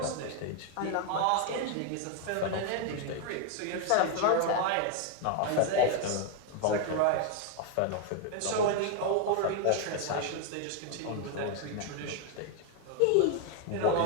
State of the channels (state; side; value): different; both; correlation 0.00